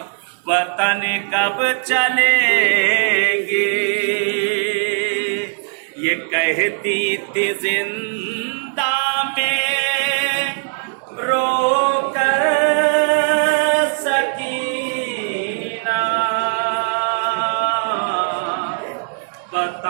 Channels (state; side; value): silent; left; digital silence